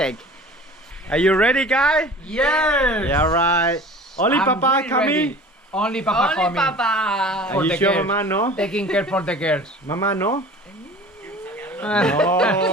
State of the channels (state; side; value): normal; both; correlation 0.42